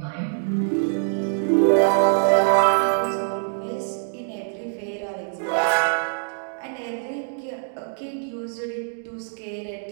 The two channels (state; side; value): silent; left; digital silence